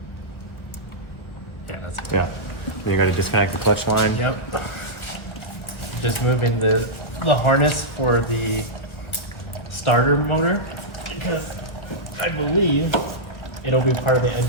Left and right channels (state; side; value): late; right; 1.5 ms